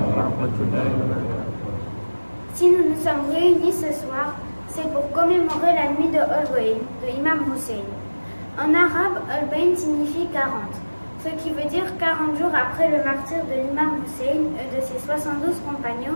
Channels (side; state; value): both; inverted; correlation -1.00